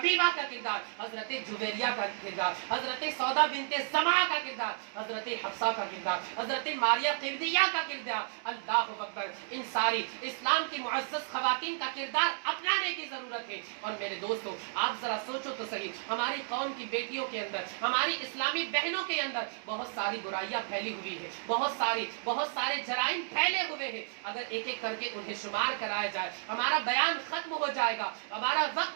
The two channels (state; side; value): silent; left; digital silence